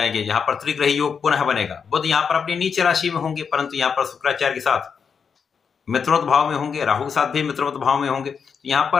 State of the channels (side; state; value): right; quieter; 6.3 dB